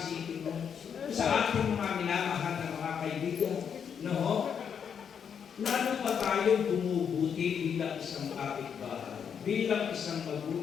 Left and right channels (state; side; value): quieter; right; 7.5 dB